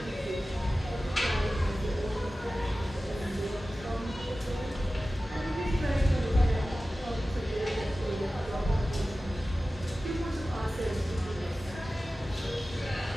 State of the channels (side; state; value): both; normal; correlation 0.95